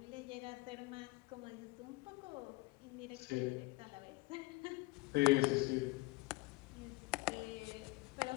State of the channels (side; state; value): right; quieter; 23.2 dB